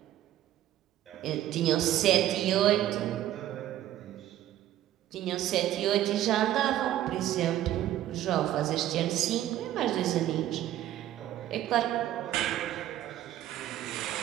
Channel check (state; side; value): quieter; left; 12.9 dB